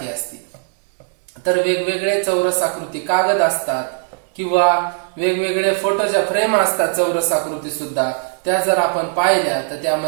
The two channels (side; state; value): left; silent; 61 dB below the other